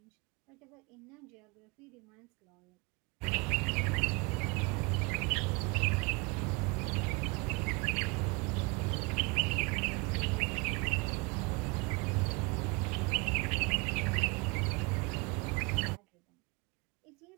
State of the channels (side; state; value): left; quieter; 28.1 dB